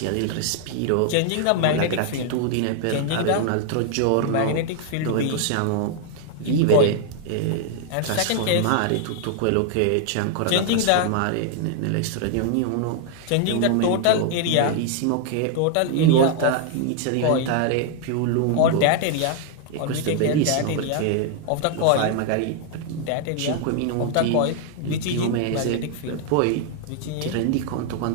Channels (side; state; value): both; different; correlation 0.00